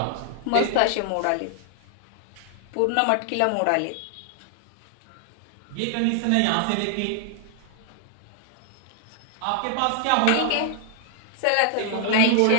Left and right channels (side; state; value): both; different; correlation 0.00